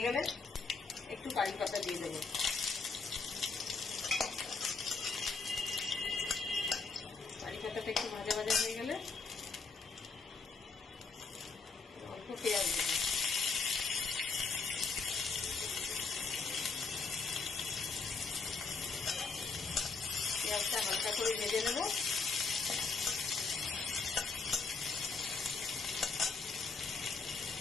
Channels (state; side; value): quieter; right; 4.6 dB